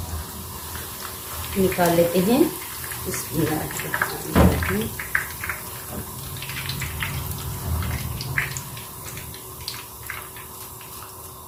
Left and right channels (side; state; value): both; identical; correlation 1.00